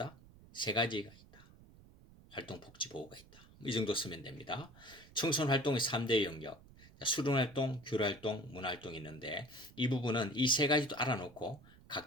3가지가 있다. 활동복지보호가 있다. 이 정도 쓰면 됩니다. 청소년 활동의 3대 영역. 수련활동, 교류활동, 문화활동이 있는데 이 부분은 이 3가지도 알아놓고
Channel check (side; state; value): right; noise; rumble, 22 dB below the sound